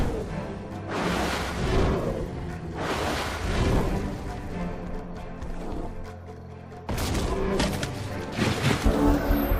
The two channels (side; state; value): both; identical; correlation 1.00